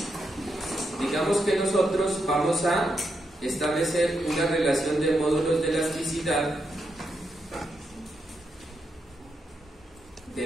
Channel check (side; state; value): both; normal; correlation 0.83